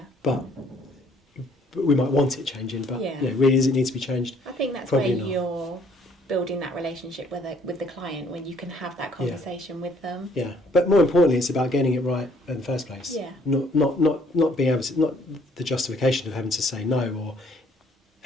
But we might want it changing. But really, does it need to be changed? I think that's Probably where not. you're building that relationship with the client, when you can have that conversation with them. But more importantly, it's about getting it right in the first place. Not being able to, not the justification of having to say no or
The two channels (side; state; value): both; normal; correlation 0.62